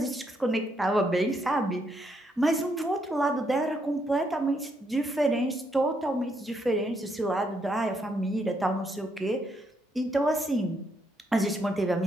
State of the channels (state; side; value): normal; both; correlation 0.75